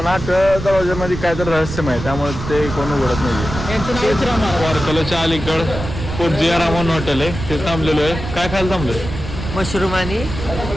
8 दरवाज्यामध्ये काय तर रहस्यमय आहे त्यामुळे ते कोण उघडत नाही. वारकलाच्या अलीकड पोटजिया रामन हॉटेल आहे, ते थांबलेलो आहे. काय खायला थांबलोय? मशरूम आणि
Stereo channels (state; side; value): noise; right; rumble, 8 dB below the sound